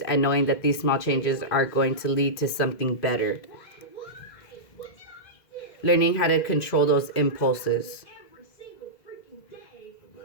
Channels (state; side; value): late; right; 2.0 ms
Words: and knowing that these small changes are going to lead to something better. Learning how to control those impulses.